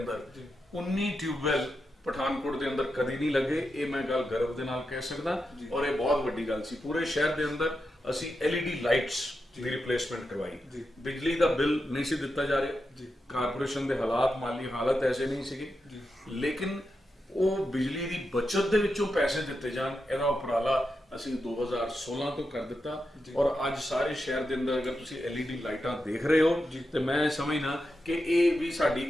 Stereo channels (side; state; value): both; normal; correlation 0.88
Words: 19 ਟਿਊਬਵੈਲ ਪਠਾਨਕੋਟ ਦੇ ਅੰਦਰ ਕਦੀ ਨਹੀਂ ਲੱਗੇ, ਇਹ ਮੈਂ ਗੱਲ ਗਰਵ ਦੇ ਨਾਲ ਕਹਿ ਸਕਦਾ। ਔਰ ਇਹ ਬਹੁਤ ਵੱਡੀ ਗੱਲ ਸੀ। ਪੂਰੇ ਸ਼ਹਿਰ ਦੇ ਅੰਦਰ ਅਸੀਂ LED ਲਾਈਟਸ ਦੀ ਰਿਪਲੇਸਮੈਂਟ ਕਰਵਾਈ। ਬਿਜਲੀ ਦਾ ਬਿੱਲ ਨਹੀਂ ਸੀ ਦਿੱਤਾ ਜਾ ਰਿਹਾ, ਕਾਰਪੋਰੇਸ਼ਨ ਦੇ ਹਾਲਾਤ, ਮਾਲੀ ਹਾਲਤ ਐਸੇ ਨਹੀਂ ਸੀਗੇ, ਲੇਕਿਨ ਉਹ ਬਿਜਲੀ ਦੀ ਬਚਤ ਦੇ ਵਿੱਚੋਂ ਪੈਸੇ ਦਿੱਤੇ ਜਾਣ, ਇਹਦਾ ਉਪਰਾਲਾ ਅਸੀਂ 2016 ਤੋਂ ਕਰ ਦਿੱਤਾ। ਔਰ ਅੱਜ ਸਾਰੇ ਸ਼ਹਿਰ ਦੇ ਅੰਦਰ ਅਗਰ ਤੁਸੀਂ LED ਲਾਈਟਾਂ ਦੇਖ ਰਹੇ ਹੋ ਤੇ ਮੈਂ ਸਮਝਣਾ ਕਿ ਇਹ ਵੀ ਸਾਡੀ